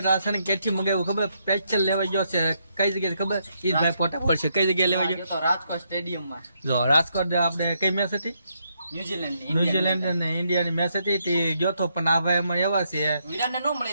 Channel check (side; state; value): both; inverted; correlation -0.76